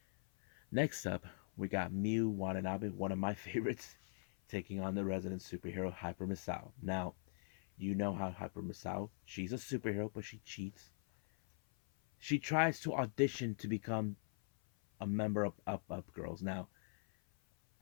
Next up, we got Miu Watanabe, one of my favorites, taking on the resident superhero Hyper Misao. Now, you know how Hyper Misao, she's a superhero, but she cheats. She tries to audition to become a member of Up Girls. Now,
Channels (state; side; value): silent; right; 50 dB below the other